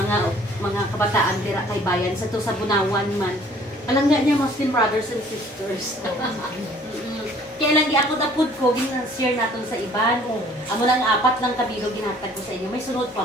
kabataan dira kay bayan sa to sa Bunawan man. Alam nga niya, Muslim brothers and sisters. Kaya lang di ako napod ko, ginashare natin sa iban. Amo lang 4 lang kabilo ginatag ko sa inyo. May sunod pa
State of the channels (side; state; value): both; normal; correlation 0.55